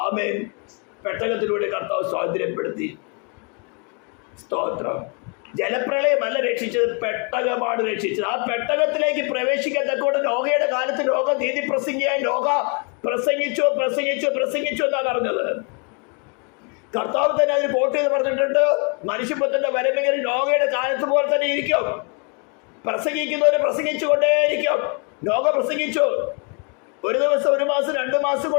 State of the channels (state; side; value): quieter; right; 36.4 dB